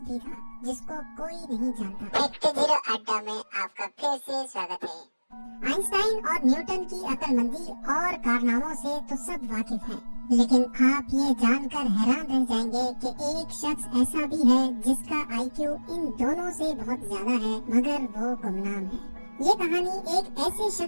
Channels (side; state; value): both; inverted; correlation -1.00